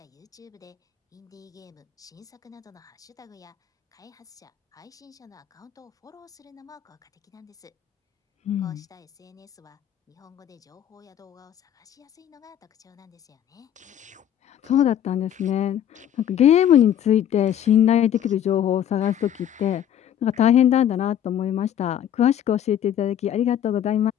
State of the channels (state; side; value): quieter; right; 10.2 dB